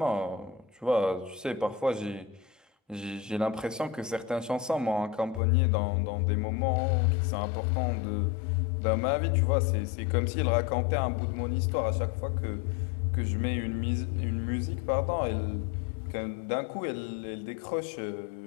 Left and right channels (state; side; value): drops out; right; at 5.4 s